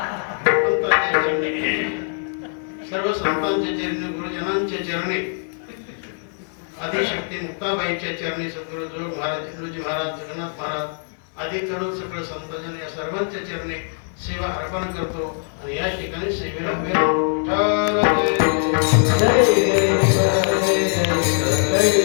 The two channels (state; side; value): silent; right; 64 dB below the other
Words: सर्व संतांच्या चरणी, गुरुजनांच्या चरणी, आदिशक्ती मुक्ताबाईच्या चरणी, सद्गुरु जोग महाराज, इंद्रजी महाराज, जगन्नाथ महाराज आदी करून सगळं संतांजन या सर्वांच्या चरणी सेवा अर्पण करतो. आणि या ठिकाणी सेवेला